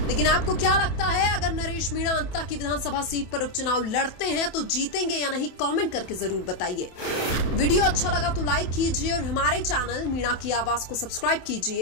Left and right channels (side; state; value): right; late; 27 ms